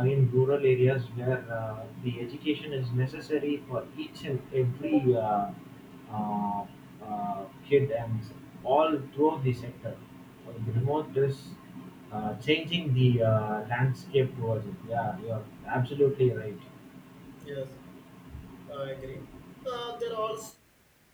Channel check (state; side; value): identical; both; correlation 1.00